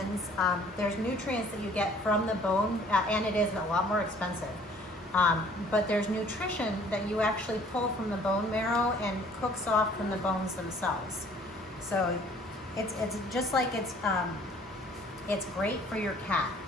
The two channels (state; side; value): normal; both; correlation 0.56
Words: there's nutrients that you get from the bone, and it is a lot more expensive. But there's nutrition that you actually pull from the bone marrow and cooks off from the bones themselves. So it's just like it's great for your cat.